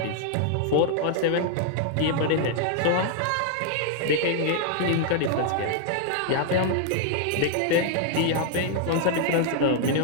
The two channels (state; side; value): different; both; correlation 0.00